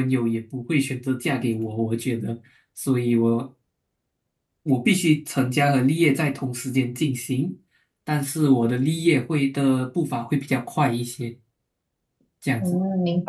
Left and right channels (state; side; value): identical; both; correlation 1.00